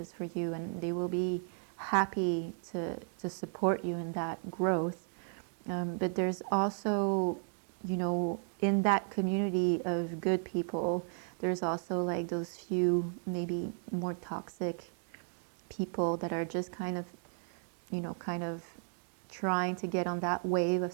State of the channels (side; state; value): left; silent; 55 dB below the other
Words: for you, and they will be happy to support you in that growth. But there's also, in that community of good people, there's also like those few maybe more toxic people that are just kind of trying to get on that wave of